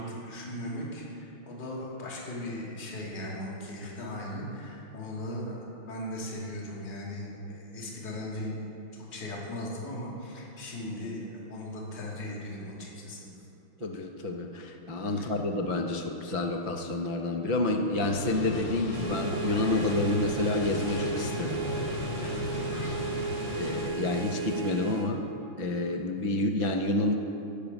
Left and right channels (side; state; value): left; late; 5.9 ms